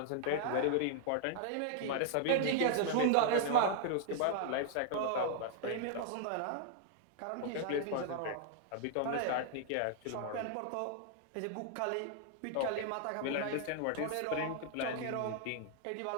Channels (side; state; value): both; different; correlation -0.01